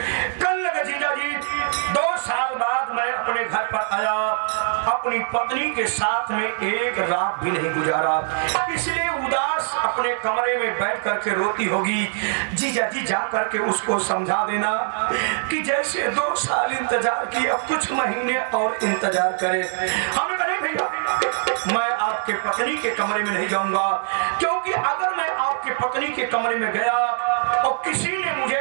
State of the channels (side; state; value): left; silent; digital silence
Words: कल लगा जीजा जी, 2 साल बाद मैं अपने घर पर आया, अपनी पत्नी के साथ में एक रात भी नहीं गुजारा, इसलिए उदास अपने कमरे में बैठ करके रोती होगी। जीजा जी जा करके उसको समझा देना कि जैसे 2 साल इंतजार किया, कुछ महीने और इंतजार करे। हमने कहा नहीं भैया, मैं आपके पत्नी के कमरे में नहीं जाऊंगा, क्योंकि अगर मैं आपके पत्नी के कमरे में गया और किसी ने